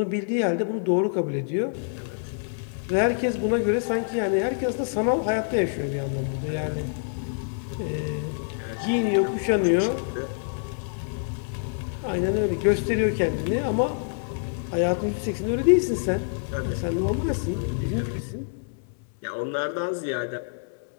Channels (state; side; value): silent; right; 61 dB below the other